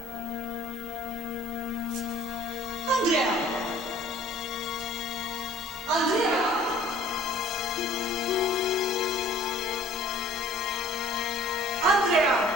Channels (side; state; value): both; normal; correlation 0.52